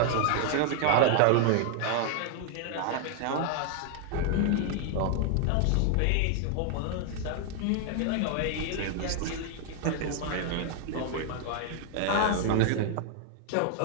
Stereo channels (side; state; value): both; different; correlation 0.00